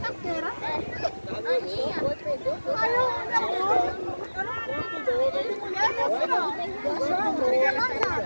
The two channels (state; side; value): inverted; both; correlation -1.00